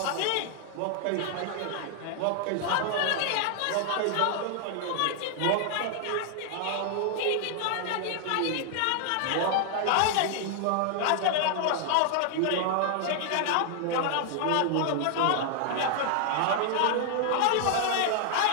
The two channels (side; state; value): both; different; correlation 0.00